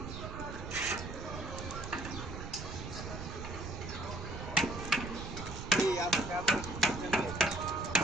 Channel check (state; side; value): noise; right; rumble, 8 dB below the sound